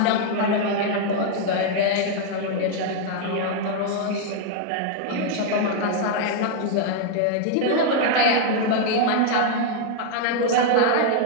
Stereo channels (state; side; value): different; both; correlation 0.00